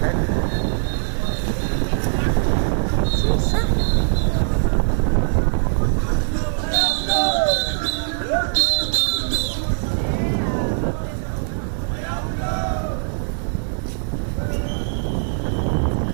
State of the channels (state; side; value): silent; left; digital silence